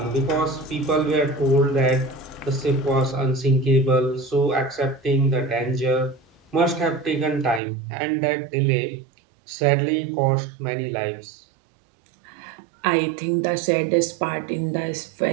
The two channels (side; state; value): left; drops out; at 7.6 s